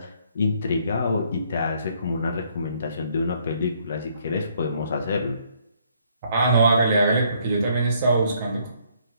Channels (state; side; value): inverted; both; correlation -0.67